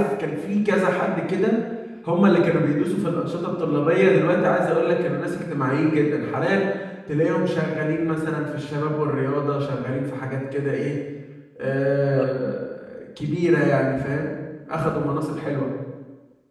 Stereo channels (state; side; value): identical; both; correlation 1.00